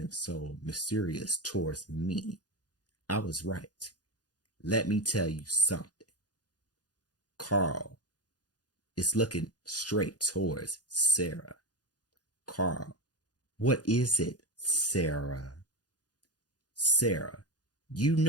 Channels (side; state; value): right; late; 0.69 ms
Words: so mysterious towards me, I was right. Let me tell you something. Carl is looking straight towards Sarah. Carl, what is it, Sarah? Sarah, you